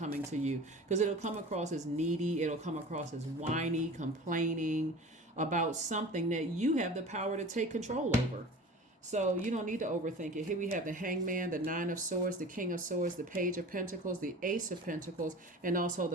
to you, because it'll come across as needy. It'll come across as whiny, complaining about something that you have the power to take control over. So you don't need to overthink it. Here we have the Hangman, the 9 of Swords, the King of Swords, the Page of Pentacles, the Ace of Pentacles, and also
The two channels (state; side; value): normal; both; correlation 0.38